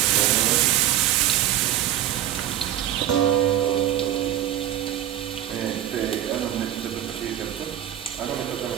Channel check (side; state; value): left; quieter; 11.8 dB